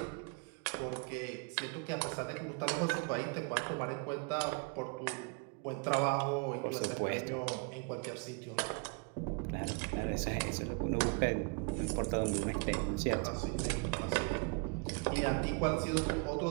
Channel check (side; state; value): left; quieter; 33.8 dB